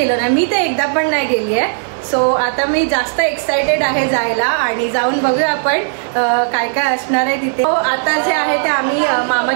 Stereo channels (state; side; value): silent; left; digital silence